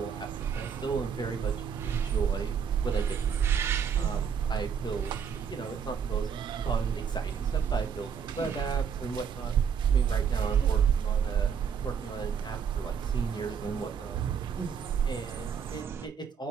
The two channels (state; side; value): quieter; left; 7.0 dB